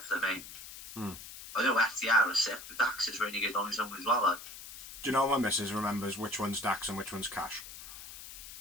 mate. I know FTR is sick, but Dax is really good on his own as well. Like. Do you know my missus remembers which one's Dax and which one's Cash?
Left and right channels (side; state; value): left; noise; hiss, 13 dB below the sound